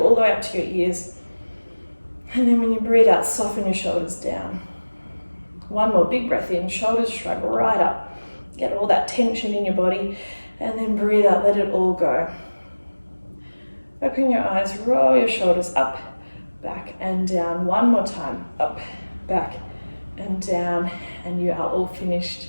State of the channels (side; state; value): both; inverted; correlation -1.00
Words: all the way up to your ears. And then when you breathe out, soften your shoulders down. One more big breath in, shoulders shrug right up. Get all that tension in your body, and then breathe out, let it all go. Open your eyes, roll your shoulders up, back and down. One more time, up, back and down, and you are all finished.